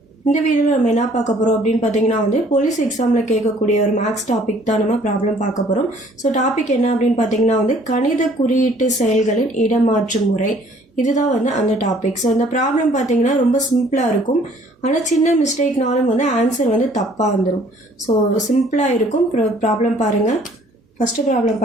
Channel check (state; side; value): normal; both; correlation 0.58